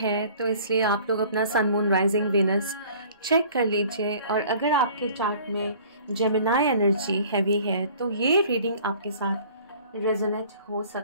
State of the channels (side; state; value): both; inverted; correlation -0.51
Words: तो इसलिए आप लोग अपना सन, मून, राइजिंग, वेनस चेक कर लीजिए। और अगर आपके चार्ट में जेमिनाई एनर्जी हैवी है तो ये रीडिंग आपके साथ रेजोनेट हो